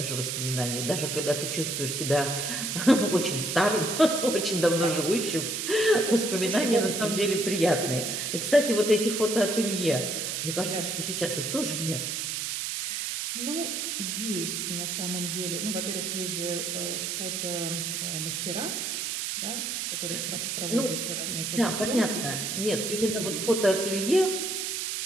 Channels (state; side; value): noise; right; hiss, 2 dB below the sound